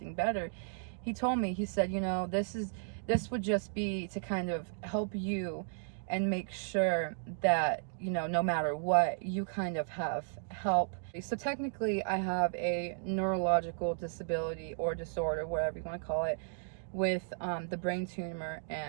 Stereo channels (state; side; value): silent; left; digital silence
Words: better, he told me, he said, this would just be to kind of help you and make sure that, no matter what, you kind of have help. So technically I have a neurological disability or disorder, whatever you want to call it, with the brain tumor